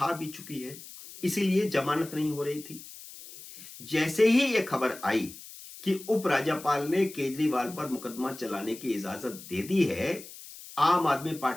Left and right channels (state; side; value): noise; left; hiss, 16 dB below the sound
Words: भी चुकी है, इसीलिए जमानत नहीं हो रही थी। जैसे ही यह खबर आई कि उपराज्यपाल ने केजरीवाल पर मुकदमा चलाने की इजाजत दे दी है, आम आदमी